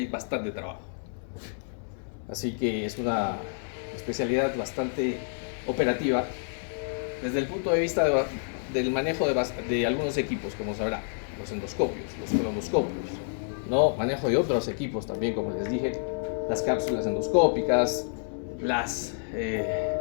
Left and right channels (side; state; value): right; silent; 58 dB below the other